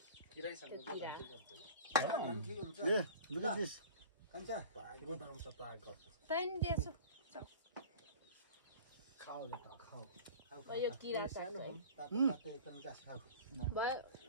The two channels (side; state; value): both; inverted; correlation -0.40